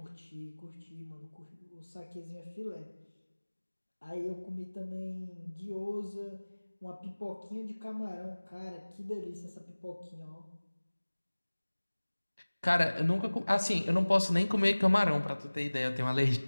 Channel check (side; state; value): both; inverted; correlation -1.00